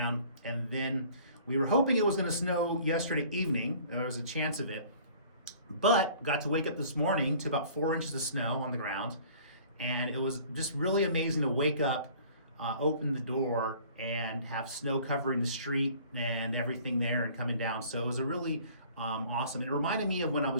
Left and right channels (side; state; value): both; inverted; correlation -0.51